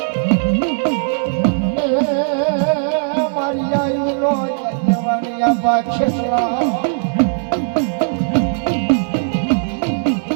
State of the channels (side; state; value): left; silent; digital silence